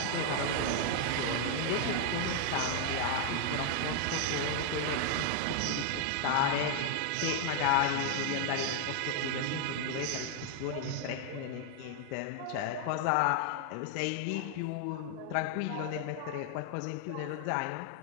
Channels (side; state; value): both; different; correlation 0.00